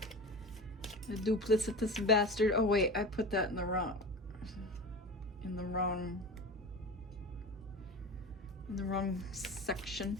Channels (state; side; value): normal; both; correlation 0.31